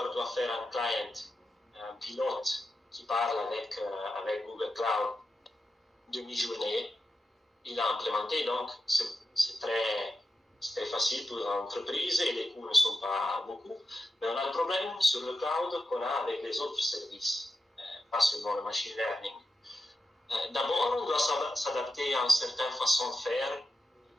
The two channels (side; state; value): both; normal; correlation 0.89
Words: doit faire un client, un pilote qui parle avec Google Cloud demi-journée, il a implémenté, donc c'est très facile pour l'entreprise et les coûts ne sont pas beaucoup. Mais on a le problème sur le cloud qu'on a avec les autres services, pas seulement le machine learning. D'abord, on doit s'adapter à une certaine façon de faire du